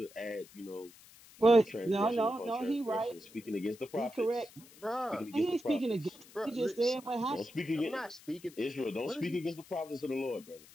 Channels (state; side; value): noise; left; hiss, 22 dB below the sound